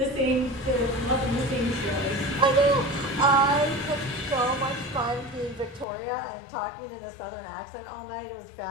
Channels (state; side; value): drops out; right; at 5.9 s